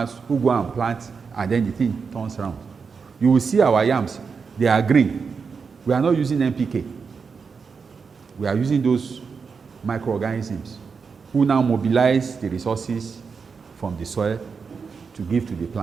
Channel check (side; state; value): left; quieter; 5.4 dB